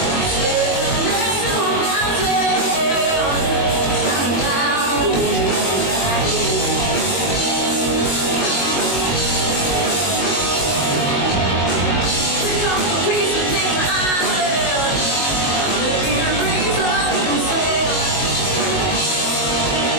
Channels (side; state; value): right; late; 22 ms